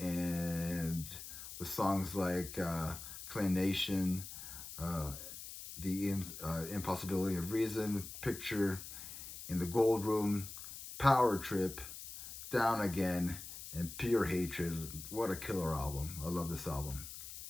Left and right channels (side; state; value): left; noise; hiss, 11 dB below the sound